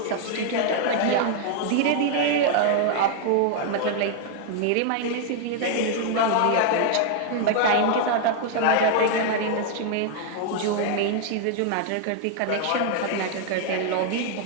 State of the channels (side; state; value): both; different; correlation 0.00